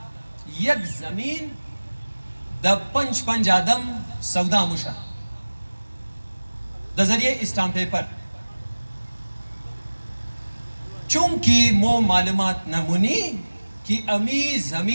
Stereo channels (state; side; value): inverted; both; correlation -1.00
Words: یک زمین د پنج آدم سودا مشا د ذریعے اسٹامپ پیپر چونکہ مو معلومات نمونی کہ امی